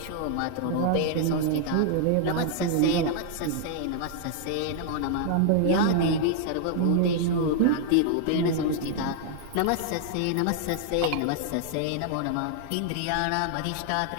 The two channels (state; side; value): different; both; correlation 0.00